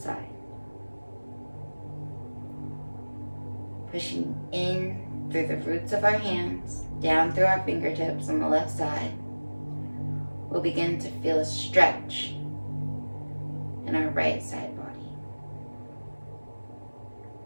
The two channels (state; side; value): inverted; both; correlation -1.00